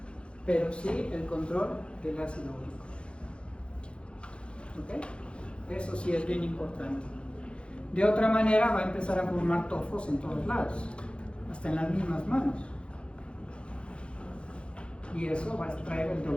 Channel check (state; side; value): late; right; 0.057 ms